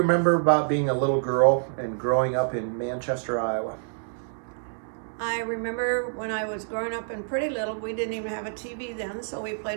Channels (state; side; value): silent; left; digital silence